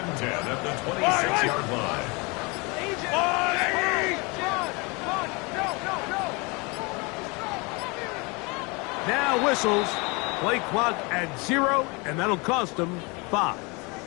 10 at the 26-yard line. Now whistles. Play clock at 0, and that'll cost them 5.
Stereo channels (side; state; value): right; quieter; 28.2 dB